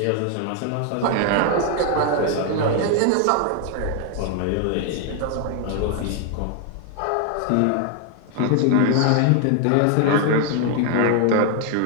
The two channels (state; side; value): different; both; correlation 0.00